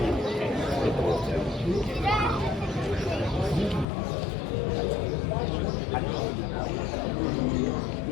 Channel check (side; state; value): right; drops out; at 3.9 s